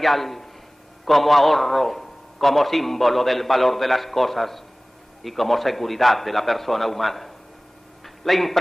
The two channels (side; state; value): both; normal; correlation 0.98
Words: como ahorro, como símbolo del valor de las cosas y como seguridad de la persona humana. La